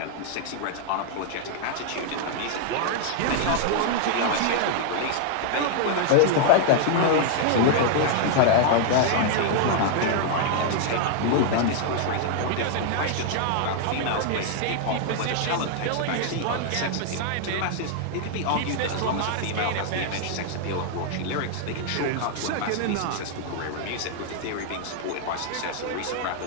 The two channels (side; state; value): both; different; correlation 0.00